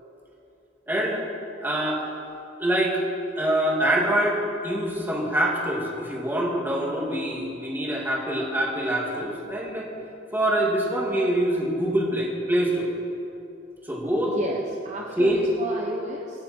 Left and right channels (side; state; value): both; normal; correlation 0.62